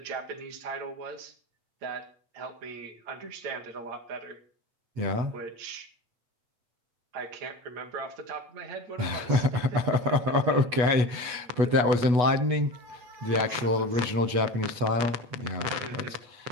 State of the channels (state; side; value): late; left; 8.2 ms